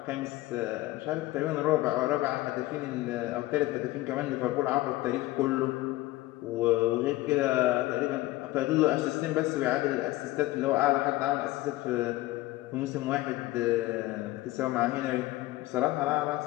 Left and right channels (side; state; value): right; quieter; 17.8 dB